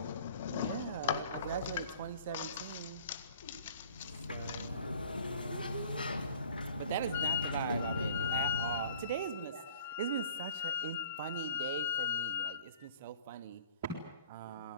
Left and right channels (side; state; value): both; inverted; correlation -0.48